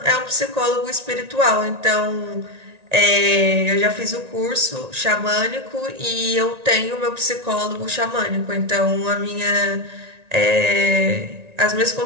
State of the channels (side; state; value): left; late; 1.9 ms